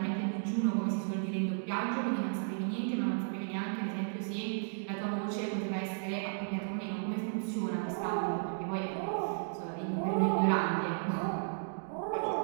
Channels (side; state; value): left; silent; digital silence